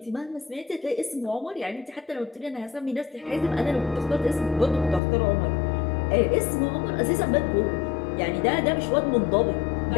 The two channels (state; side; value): drops out; right; at 5.0 s